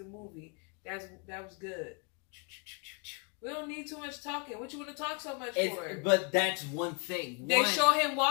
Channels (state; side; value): quieter; right; 34.2 dB